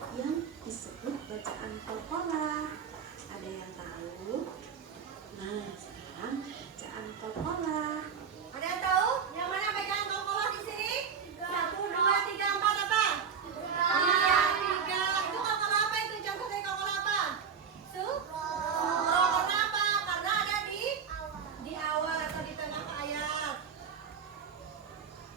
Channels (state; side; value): quieter; left; 6.7 dB